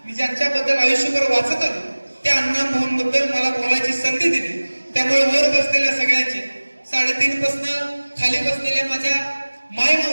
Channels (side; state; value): both; inverted; correlation -1.00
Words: मी ज्यांच्याबद्दल आयुष्यभर वाचत आलो त्या अण्णाभाऊंबद्दल मला बोलायची संधी दिली. त्यामुळे वर बसलेल्या सगळ्यांचे 3.5 पासून खाली बसलेल्या माझ्या